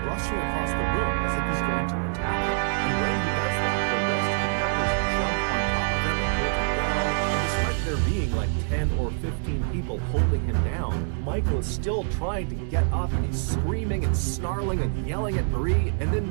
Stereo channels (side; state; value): left; silent; digital silence